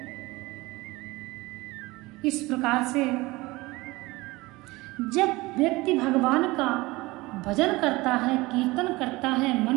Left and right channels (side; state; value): left; quieter; 21.4 dB